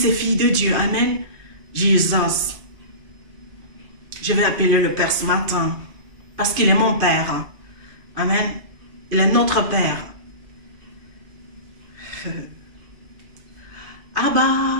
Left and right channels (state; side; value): late; left; 2.5 ms